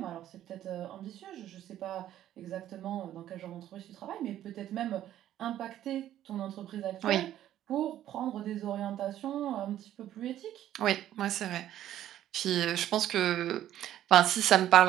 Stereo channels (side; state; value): left; quieter; 12.2 dB